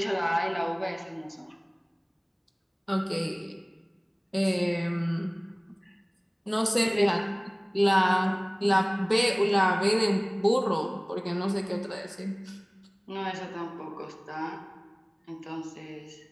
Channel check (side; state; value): both; identical; correlation 1.00